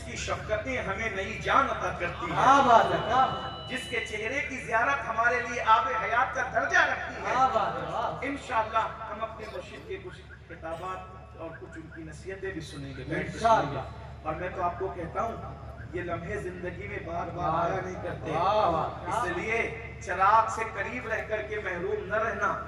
کی شفقتیں ہمیں نئی جان عطا کرتی کیا ہیں، بات ہے کیا بات جس کے چہرے کی زیارت ہمارے لیے آب حیات کا درجہ رکھتی ہے۔ کیا بات ہے واہ انشاءاللہ ہم اپنے مرشد کے کچھ کتابات اور کچھ ان کی نصیحتیں بھی سنیں گے، بیٹھ کے سنیں گے۔ اور میں تو آپ کو کہتا ہوں یہ لمحے زندگی میں بار بار آیا نہیں کرتے، واہ واہ اس لیے چراغ سے قریب رہ کر کے محروم نہ رہنا،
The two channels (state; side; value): identical; both; correlation 1.00